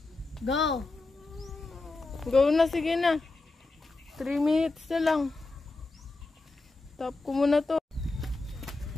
Go. Go na, sige na. 3 minutes na lang. Stop ko muna to.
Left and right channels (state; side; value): quieter; right; 3.3 dB